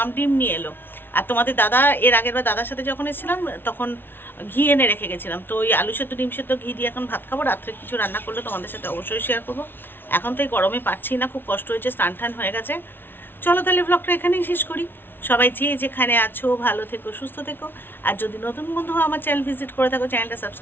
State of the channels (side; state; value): right; late; 0.10 ms